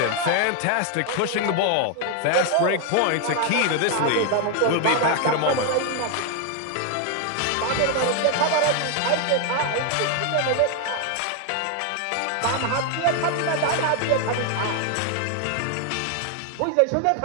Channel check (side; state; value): both; different; correlation 0.00